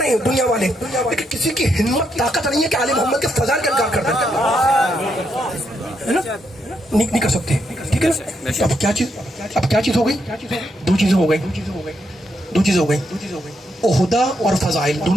ہیں دنیا والے, لیکن کسی کی ہمت طاقت نہیں ہے کہ آل محمد کے فضائل کا انکار کر دیں, ہے نا. نہیں کر سکتے, ٹھیک ہے نا. اب کیا چیز ہو گئی, دو چیزیں ہو گئی. عہدہ اور فضائل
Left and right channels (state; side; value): normal; both; correlation 0.79